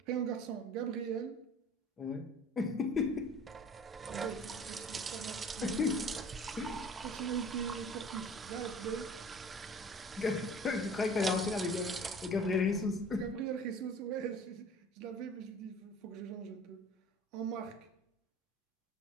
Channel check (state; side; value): normal; both; correlation 0.46